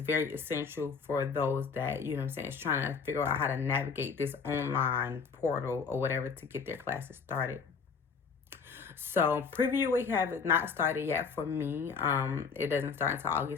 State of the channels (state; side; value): quieter; right; 5.6 dB